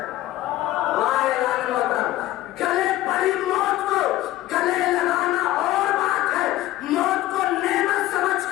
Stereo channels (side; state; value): right; quieter; 15.4 dB